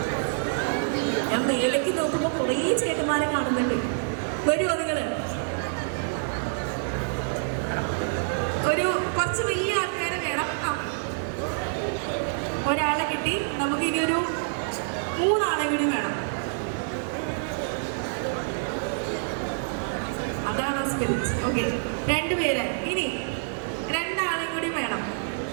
ഞാൻ മേലേക്ക് നോക്കുമ്പോൾ കുറേ ചേട്ടന്മാരെ കാണുന്നുണ്ട്. വരുമോ നിങ്ങള്? ഒരു കുറച്ച് വലിയ ആൾക്കാരെ വേണം. ഒരാളെ കിട്ടി. നമുക്ക് ഇനി ഒരു 3 ആളെ കൂടി വേണം. അതാണ് സ്പിരിറ്റ്. ഓക്കെ, 2 പേര്. ഇനി 2 ആളെ കൂടി വേണം.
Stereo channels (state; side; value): silent; left; 60 dB below the other